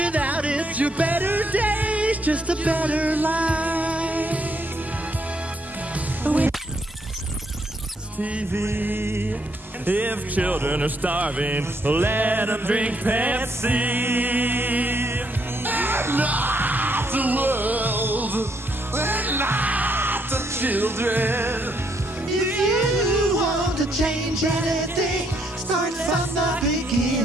it, your better days, just a better life. With TV, if children are starving, let them drink Pepsi. Not the world, and not the children. If you want to change anything, start from the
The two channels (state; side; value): normal; both; correlation 0.73